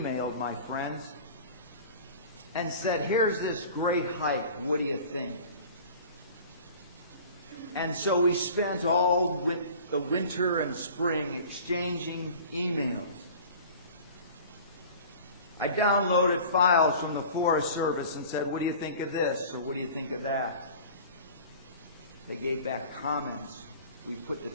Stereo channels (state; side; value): inverted; both; correlation -0.42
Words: my friends and said, here's this great hike, what do you think? And so we spent all the winter and spring exchanging emails. I downloaded files from the Forest Service and said, what do you think of this? Or what do you think of that? They gave back comments. We put the